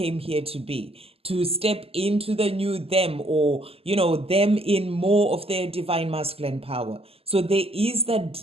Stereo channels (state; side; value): late; left; 0.28 ms